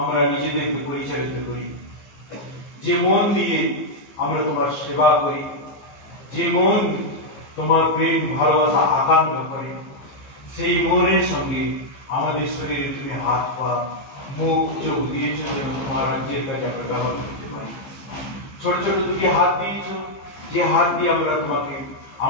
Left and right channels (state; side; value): late; right; 15 ms